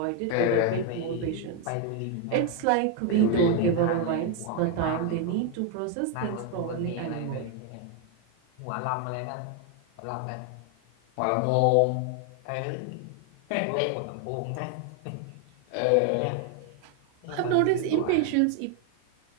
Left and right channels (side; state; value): both; different; correlation 0.01